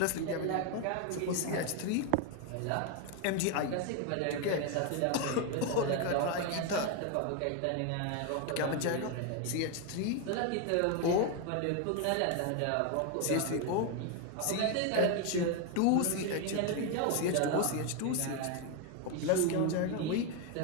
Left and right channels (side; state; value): both; different; correlation 0.01